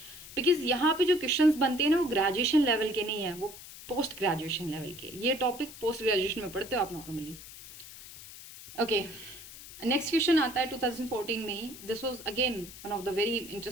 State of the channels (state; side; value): noise; left; hiss, 15 dB below the sound